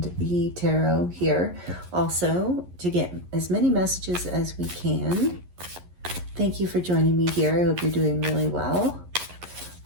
the tarot here also to get as many messages as we can. Thank you for joining me here. I hope you're doing really well.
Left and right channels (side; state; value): left; late; 11 ms